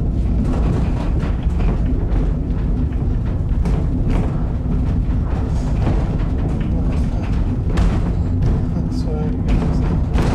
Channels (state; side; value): identical; both; correlation 1.00